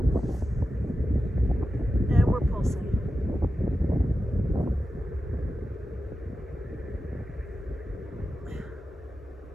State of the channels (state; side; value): normal; both; correlation 0.91